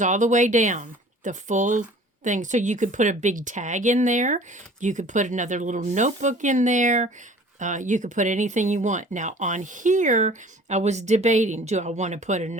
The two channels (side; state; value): both; normal; correlation 0.48